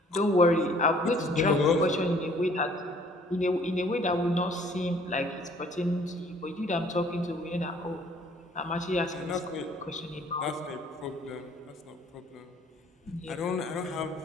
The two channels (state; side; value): normal; both; correlation 0.58